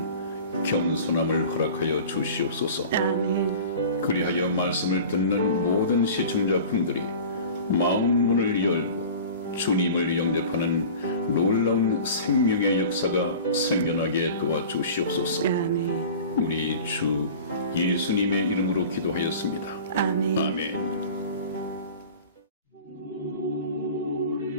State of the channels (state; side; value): inverted; both; correlation -0.39